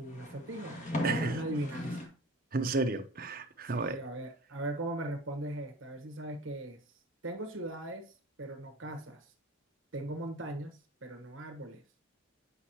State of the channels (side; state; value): both; normal; correlation 0.41